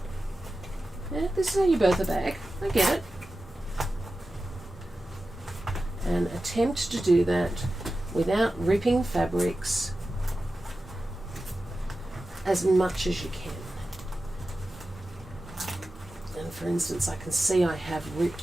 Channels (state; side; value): normal; both; correlation 0.93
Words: Yeah, this is how you birth a bag. I get it. And attempt to do that without ripping fabrics as much as you can. And for instance, I can see I have